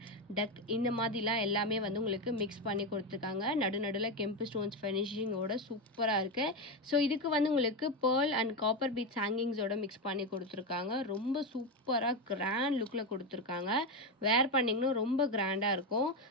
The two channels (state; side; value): normal; both; correlation 0.12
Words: டக் இந்த மாதிரிலாம் எல்லாமே வந்து உங்களுக்கு மிக்ஸ் பண்ணி கொடுத்துருக்காங்க. நடுநடுவில் கெம்பு ஸ்டோன்ஸ் ஃபினிஷிங்கோட சூப்பராக இருக்குது. ஸோ இதுக்கு வந்து உங்களுக்கு பேர்ல் அண்ட் காப்பர் பீட்ஸ் ஹேங்கிங்ஸோட மிக்ஸ் பண்ணி கொடுத்துருக்காங்க. ரொம்ப சூப்பராக கிராண்ட் லுக்கில் கொடுத்துருக்காங்க. வேர் பண்ணிங்கன்னா ரொம்ப கிராண்டாக இருக்கும்.